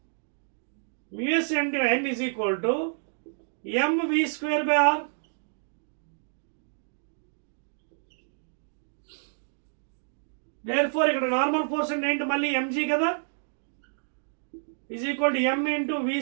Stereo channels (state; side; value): silent; left; digital silence